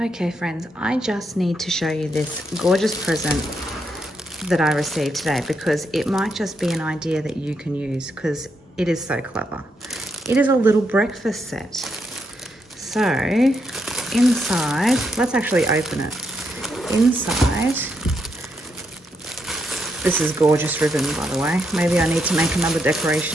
Okay friends, I just need to show you this gorgeous present that I received today because it might just be an idea that you can use because it is so clever. It is a little breakfast set. So inside, let's actually open it. Inside, this is gorgeous ribbon, by the way. Maybe I need to make another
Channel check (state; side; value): normal; both; correlation 0.79